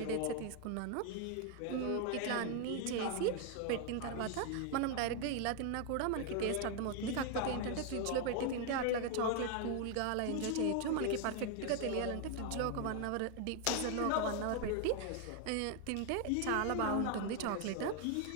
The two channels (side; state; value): both; different; correlation 0.00